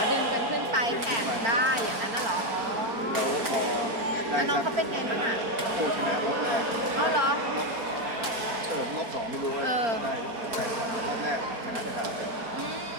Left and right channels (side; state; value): left; late; 4.4 ms